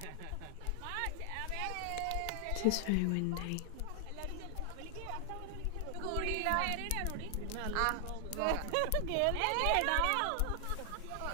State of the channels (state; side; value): different; both; correlation 0.00